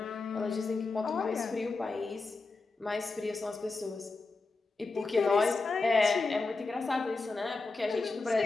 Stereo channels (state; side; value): quieter; right; 3.7 dB